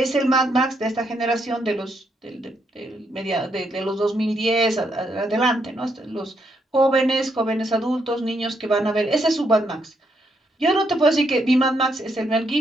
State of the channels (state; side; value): normal; both; correlation 0.77